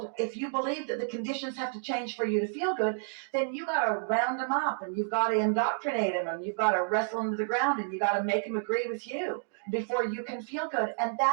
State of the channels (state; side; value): silent; left; digital silence